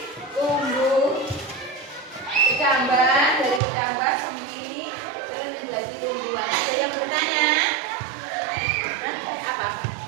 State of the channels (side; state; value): left; drops out; at 3.6 s